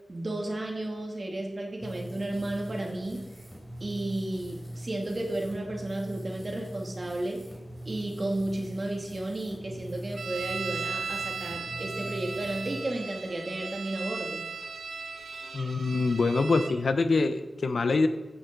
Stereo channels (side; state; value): both; normal; correlation 0.93